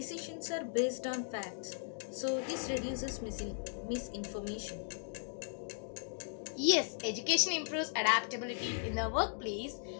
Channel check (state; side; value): silent; right; digital silence